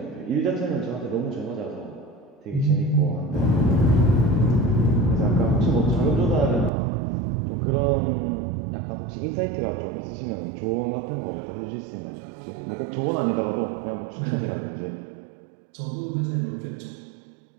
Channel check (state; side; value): drops out; left; at 6.7 s